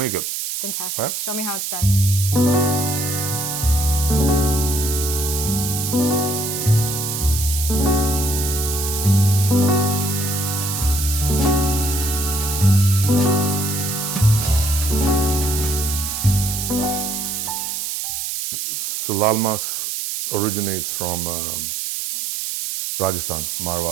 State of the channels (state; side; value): noise; right; hiss, 3 dB below the sound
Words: it. Fantastic. Right? Show me how it's done. So Laal Maas originates from Rajasthan,